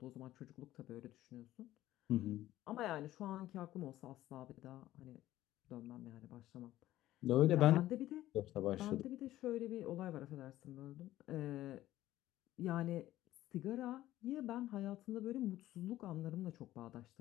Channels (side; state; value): right; quieter; 14.7 dB